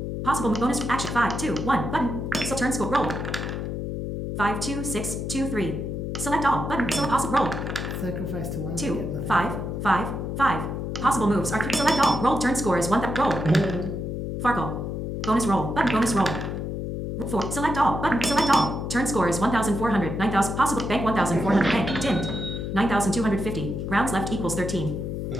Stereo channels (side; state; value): left; noise; hum, 4 dB below the sound